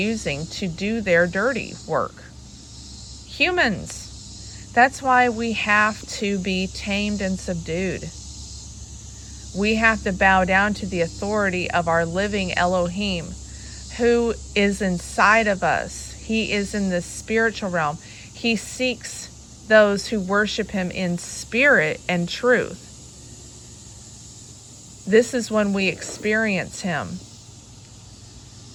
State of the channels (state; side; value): identical; both; correlation 1.00